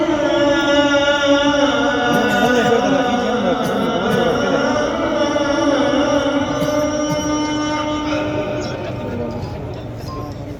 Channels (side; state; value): both; identical; correlation 1.00